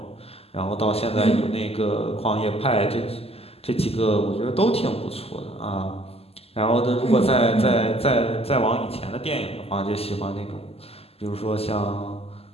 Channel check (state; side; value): late; right; 0.29 ms